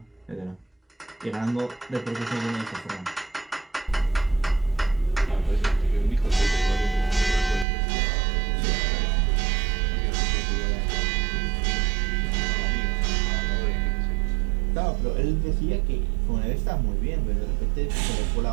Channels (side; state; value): left; drops out; at 7.7 s